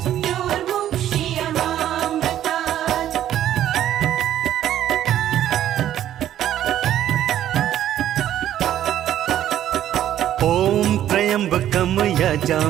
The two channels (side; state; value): left; quieter; 11.7 dB